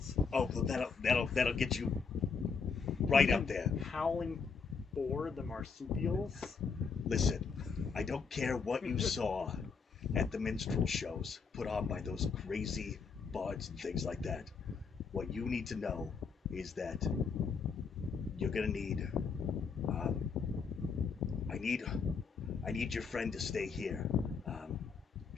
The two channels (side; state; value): right; quieter; 5.4 dB